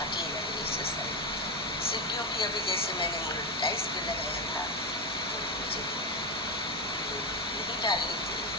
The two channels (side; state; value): both; normal; correlation 0.11